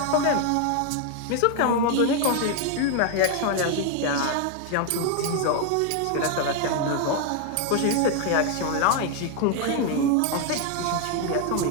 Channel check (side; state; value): both; different; correlation 0.01